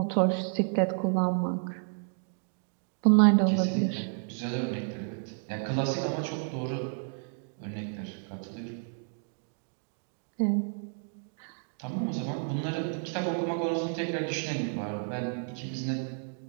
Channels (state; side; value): silent; left; 57 dB below the other